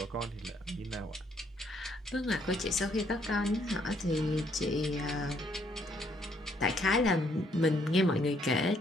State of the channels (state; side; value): normal; both; correlation 0.69